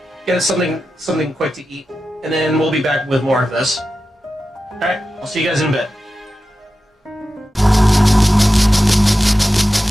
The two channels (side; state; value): both; normal; correlation 0.92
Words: get us something quick to eat, and then we'll be back with more of this. Alright, I'll see you guys in a bit.